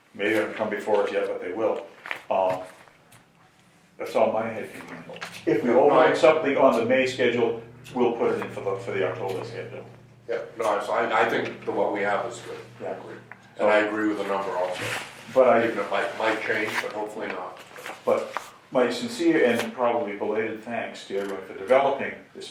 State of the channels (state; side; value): identical; both; correlation 1.00